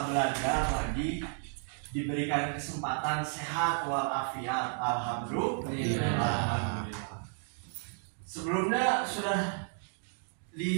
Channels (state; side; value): silent; left; 56 dB below the other